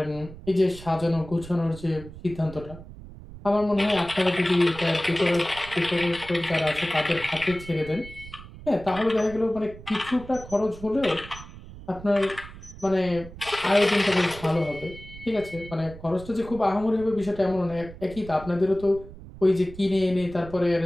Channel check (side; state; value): right; noise; rumble, 16 dB below the sound